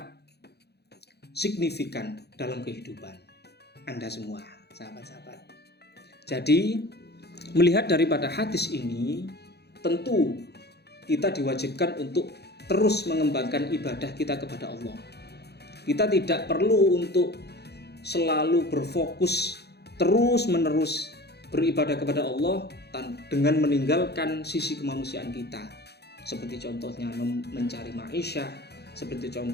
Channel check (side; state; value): right; late; 0.48 ms